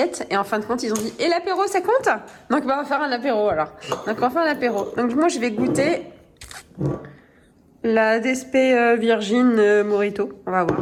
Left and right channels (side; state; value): both; identical; correlation 1.00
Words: et en fin de compte ils ont dit « Et l'apéro ça compte ?» Donc bah, on va faire un apéro alors. Donc on va faire un apéro. Donc moi je vais goûter la DSP Virgin Morito. On va voir.